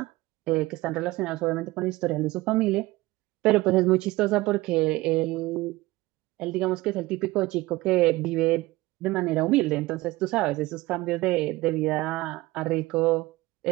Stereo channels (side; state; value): left; quieter; 19.7 dB